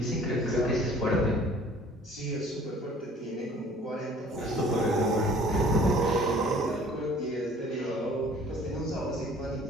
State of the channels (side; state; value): both; normal; correlation 0.52